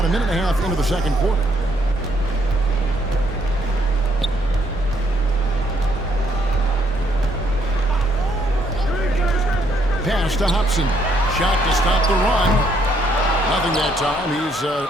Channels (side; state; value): both; normal; correlation 0.70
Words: a minute and a half into the second quarter. Pass to Hobson. Shot to stop the run. Nothing that time. He's